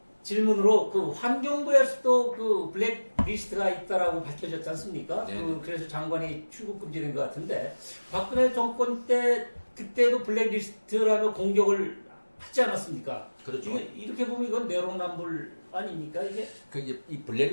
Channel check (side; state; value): both; inverted; correlation -1.00